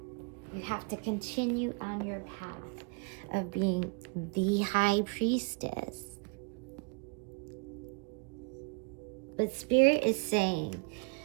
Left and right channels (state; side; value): quieter; left; 30.7 dB